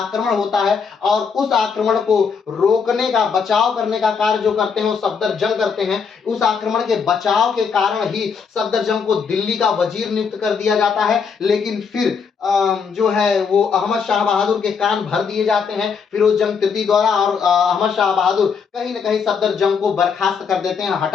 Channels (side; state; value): right; quieter; 5.9 dB